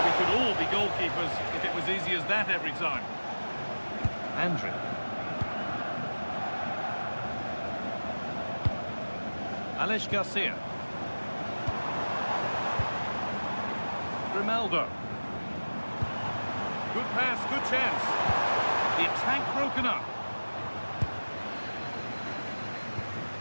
We could all be goalkeepers if it was easy as that every time. Andrew. Alex Garcia. Ronaldo. Good pass, good chance. The attack broken up.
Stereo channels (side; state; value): both; inverted; correlation -1.00